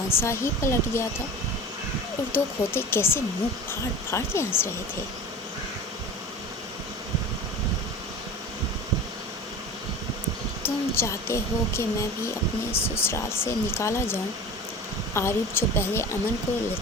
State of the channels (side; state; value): both; normal; correlation 0.34